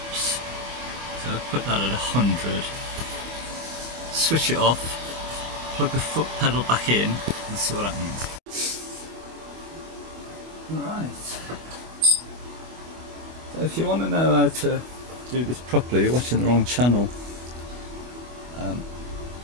So I put that at 100. Switch it off, plug the foot pedal back in, and see what happens. Right. So if you want to know how to do this properly, you're watching the wrong channel.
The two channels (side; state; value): left; late; 25 ms